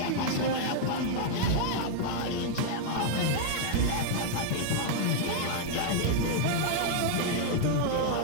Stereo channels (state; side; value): different; both; correlation 0.00